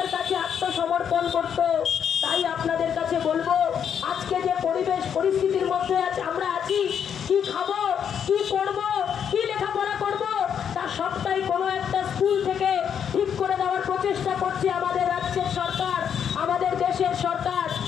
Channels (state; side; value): quieter; right; 8.1 dB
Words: কাছে আত্মসমর্পণ করত। তাই আপনাদের কাছে বলবো, আজকে যে পরিস্থিতির মধ্যে আমরা আছি, কি খাবো, কি পড়বো, কি লেখাপড়া করবো, তা সবটাই কোনো একটা স্কুল থেকে ঠিক করে দেওয়ার প্রচেষ্টা করছে আমাদের রাজ্যের সরকার, আমাদের দেশের সরকার।